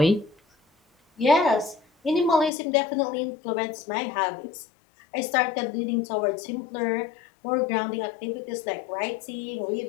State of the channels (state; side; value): drops out; right; at 2.5 s